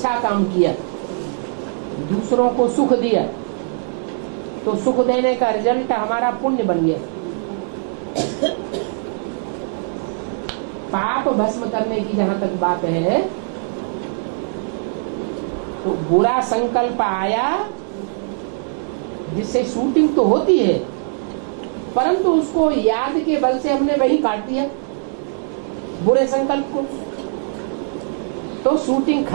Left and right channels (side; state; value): left; silent; digital silence